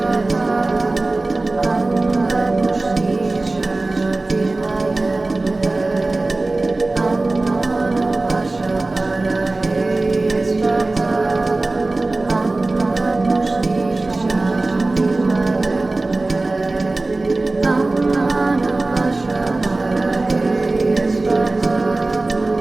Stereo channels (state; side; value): quieter; left; 3.1 dB